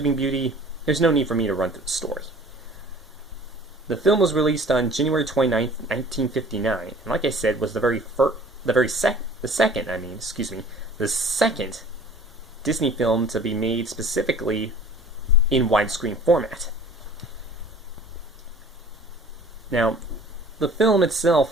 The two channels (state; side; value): normal; both; correlation 0.47